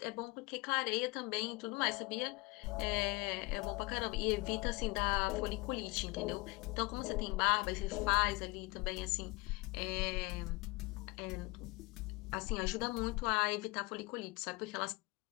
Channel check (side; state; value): right; quieter; 24.4 dB